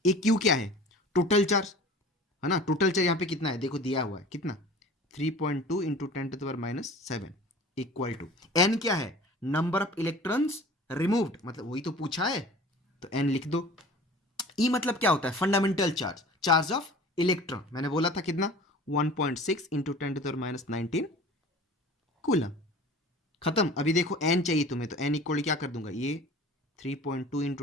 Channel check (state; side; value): normal; both; correlation 0.42